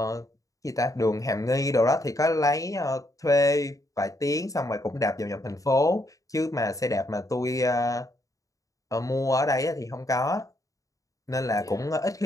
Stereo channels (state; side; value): late; right; 0.16 ms